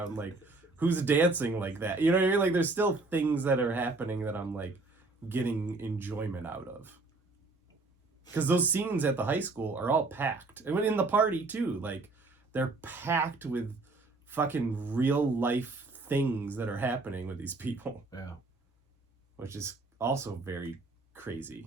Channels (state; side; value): quieter; left; 3.5 dB